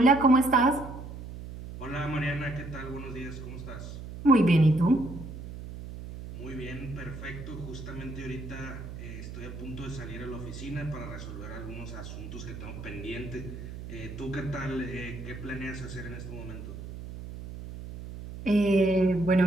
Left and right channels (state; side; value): noise; right; hum, 10 dB below the sound